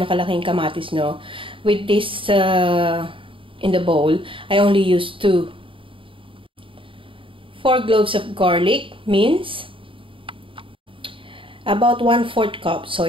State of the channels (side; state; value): left; late; 0.25 ms